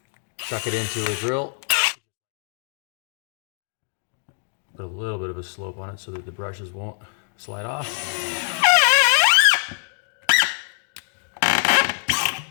chuck it into a drill, put a little bit of a slope on it so that the brushes won't slide off.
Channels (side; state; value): right; silent; 63 dB below the other